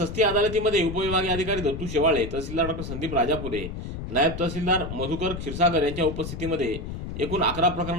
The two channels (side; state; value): left; noise; rumble, 7 dB below the sound